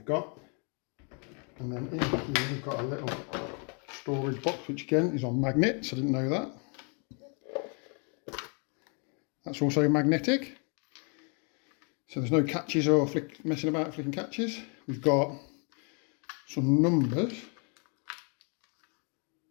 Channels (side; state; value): right; quieter; 37.9 dB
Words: got. And then in here we've got a little storage box which again is on magnets. I didn't know that. That's also magnetic, so there's no catches or messing about flicking catches. We've got some numbers,